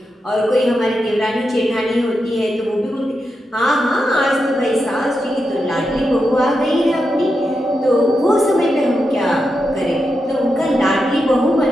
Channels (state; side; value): normal; both; correlation 0.87